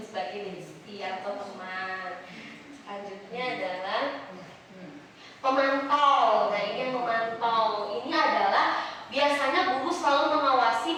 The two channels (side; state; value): both; identical; correlation 1.00